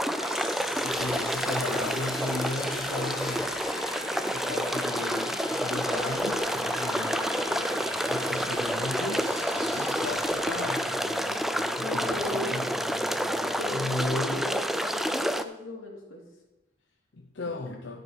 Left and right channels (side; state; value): both; normal; correlation 0.74